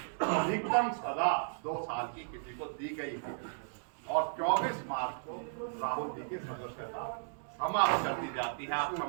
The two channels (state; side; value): silent; left; digital silence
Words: अधिकतम सजा 2 साल की किसी को दी गई है, और 24 मार्च को राहुल जी की सदस्यता समाप्त कर दी जाती है। आप